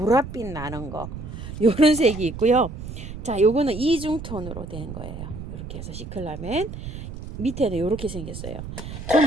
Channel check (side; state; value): right; noise; rumble, 9 dB below the sound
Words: 나는 거 요런 색이 있고요. 자, 요거는 이중톤으로 된 거예요. 이렇게 해서 시클라멘 밑에는 이렇게 생겼어요.